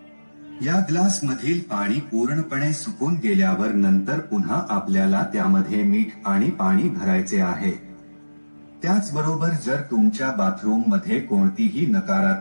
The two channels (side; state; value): both; inverted; correlation -1.00